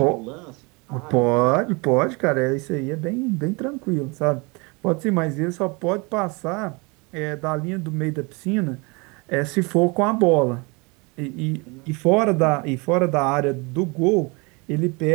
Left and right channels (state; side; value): quieter; left; 28.7 dB